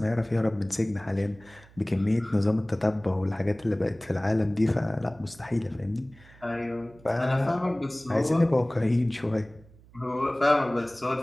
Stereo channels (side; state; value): right; noise; hum, 25 dB below the sound